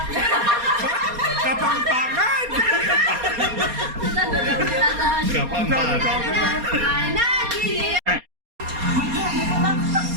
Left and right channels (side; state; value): left; late; 4.2 ms